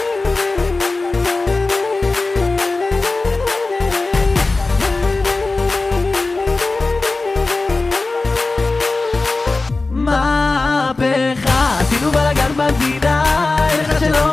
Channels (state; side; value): quieter; right; 3.5 dB